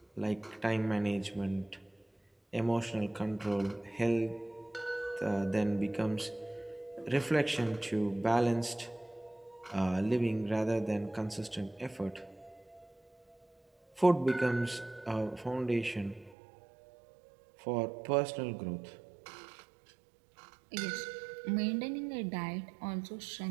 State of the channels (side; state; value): left; drops out; at 16.4 s